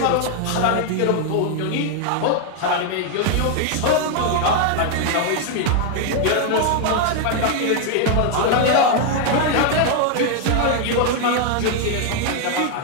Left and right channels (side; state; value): both; different; correlation 0.00